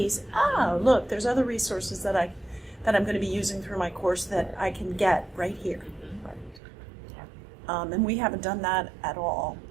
Oh, look, there's other resources that I'm going to be using through my course that I can get right here. And we haven't done that at all.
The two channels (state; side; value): drops out; left; at 6.6 s